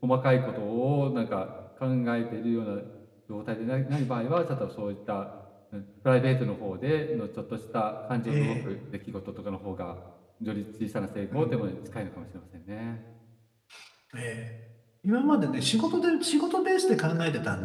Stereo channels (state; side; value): identical; both; correlation 1.00